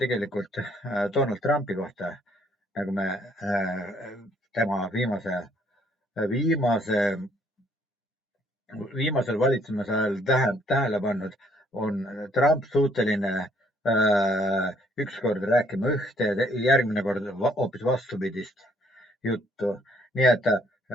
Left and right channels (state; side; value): normal; both; correlation 0.65